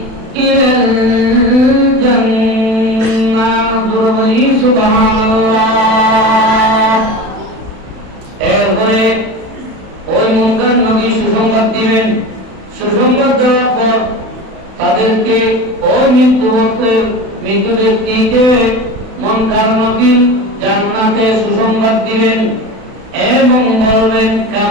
الجنة سبحان الله এরপরে ওই মুনকার নবী সুসংবাদ দিবেন। সুসংবাদ দেওয়ার পর তাদেরকে ওই মৃত্যু ব্যক্তিকে মুনকার নবী জান্নাতে সুসংবাদ দিবেন এবং বলবেন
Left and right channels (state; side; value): late; left; 32 ms